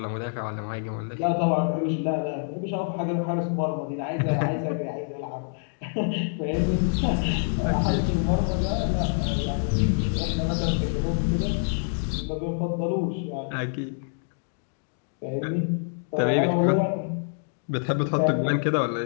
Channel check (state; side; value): silent; right; digital silence